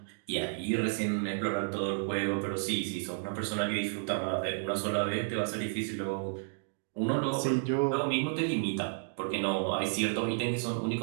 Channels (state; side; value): silent; left; digital silence